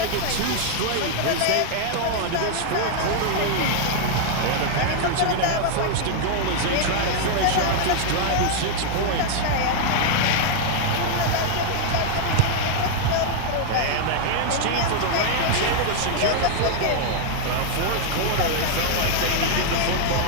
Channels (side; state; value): both; different; correlation 0.00